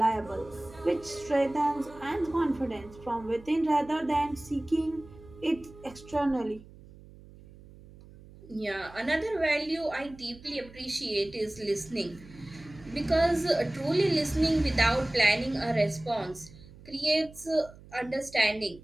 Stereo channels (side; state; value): right; noise; hum, 20 dB below the sound